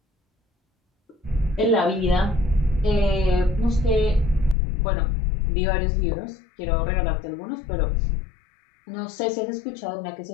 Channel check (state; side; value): drops out; right; at 4.5 s